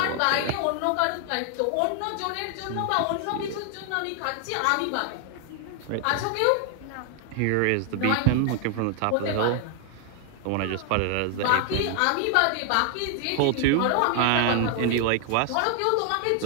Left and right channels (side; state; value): both; different; correlation 0.00